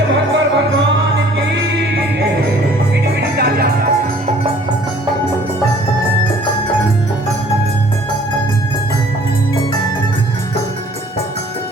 भगवान भगवान की मीठी मीठी तालियां।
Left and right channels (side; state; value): both; normal; correlation 0.55